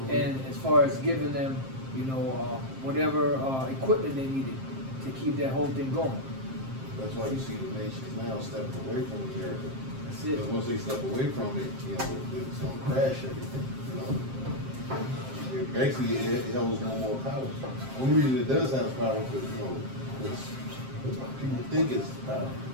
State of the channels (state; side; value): late; left; 7.6 ms